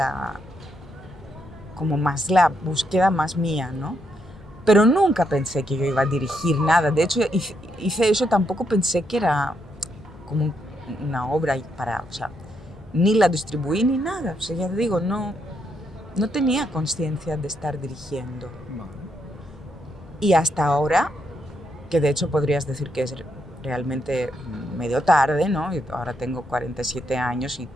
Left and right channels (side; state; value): both; normal; correlation 0.78